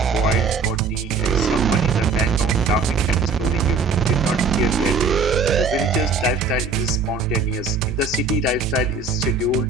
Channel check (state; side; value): quieter; left; 4.5 dB